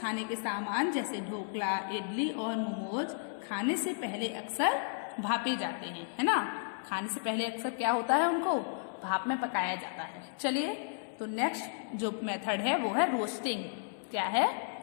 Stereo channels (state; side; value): silent; right; 55 dB below the other